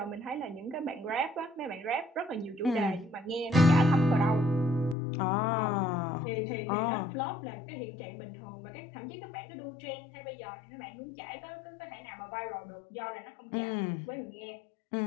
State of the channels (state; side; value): drops out; right; at 5.0 s